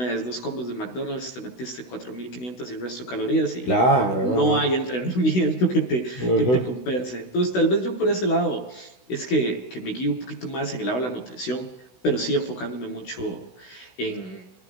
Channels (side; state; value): right; late; 16 ms